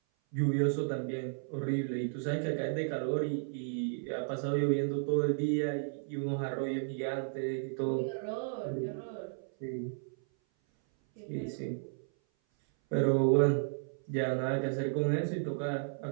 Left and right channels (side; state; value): left; silent; 55 dB below the other